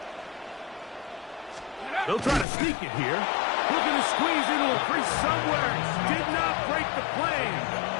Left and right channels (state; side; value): drops out; right; at 2.5 s